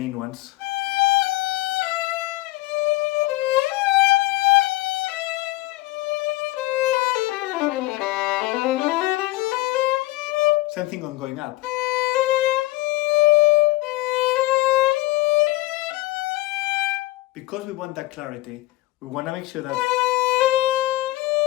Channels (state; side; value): quieter; right; 18.8 dB